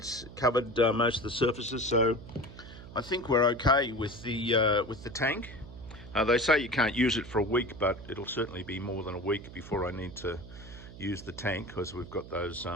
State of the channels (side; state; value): right; noise; hum, 15 dB below the sound